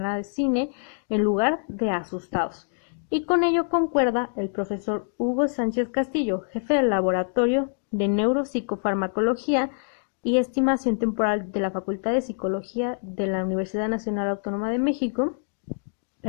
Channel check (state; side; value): silent; right; digital silence